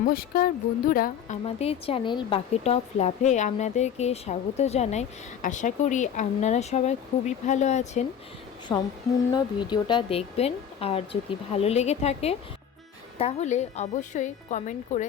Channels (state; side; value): quieter; right; 8.5 dB